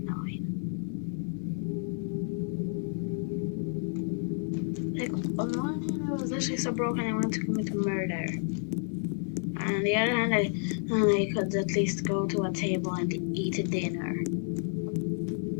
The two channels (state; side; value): silent; right; 55 dB below the other